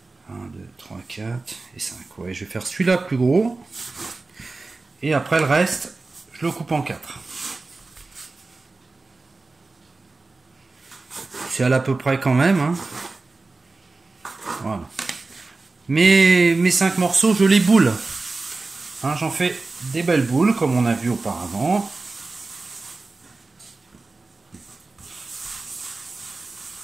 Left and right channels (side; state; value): left; quieter; 3.6 dB